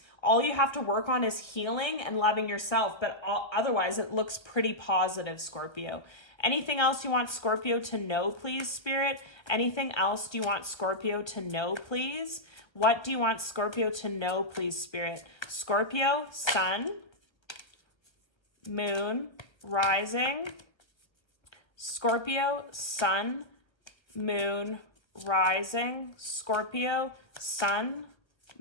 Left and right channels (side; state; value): right; late; 1.3 ms